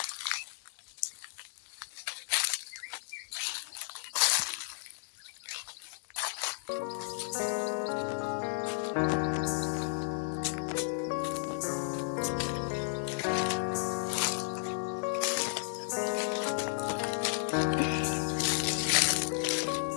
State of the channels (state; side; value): silent; right; 55 dB below the other